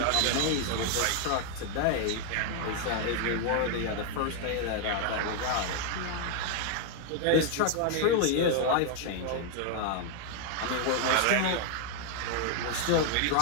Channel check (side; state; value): both; different; correlation 0.00